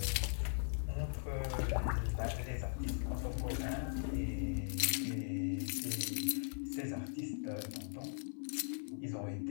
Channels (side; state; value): right; silent; 51 dB below the other